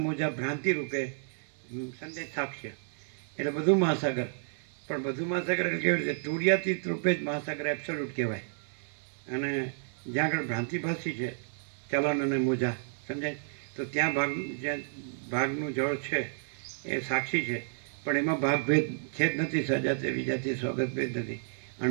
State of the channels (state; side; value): silent; left; digital silence